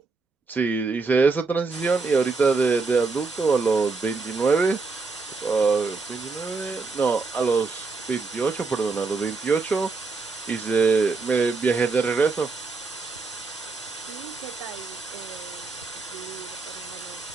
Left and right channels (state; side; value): quieter; left; 4.2 dB